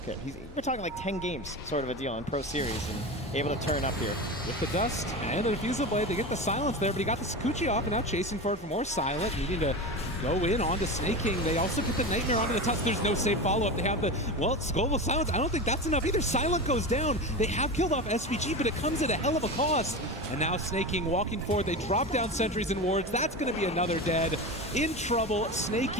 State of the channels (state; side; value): normal; both; correlation 0.25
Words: We're talking like 10 games sort of a deal in Pro Series and able to turn up here. With the dust and the Refusal Blade, they get the silence there, but he got the Sakuchi off and now chasing for it for more silent, needing to go in onto Snake King. They also get the Nightmare onto the touch. There's no safe follow-up. They have the, well, Global Silence. I don't think that's enough either. Silent goes down. They have killed off SVG, but it comes at a hell of a cost. And now Snake King walking forward. They drop down sentries and wards. That's going to be another dead. In trouble. Snake